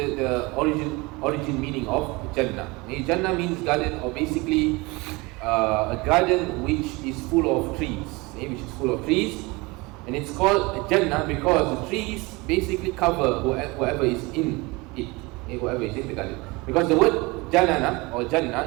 origin meaning of Jannah. Okay, Jannah means garden, or basically a garden which is full of trees. Okay, which is full of trees, and it's called Jannah because the trees basically cover whoever is in it. Okay, whoever is in the garden. Because the word Jannana or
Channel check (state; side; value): quieter; left; 24.6 dB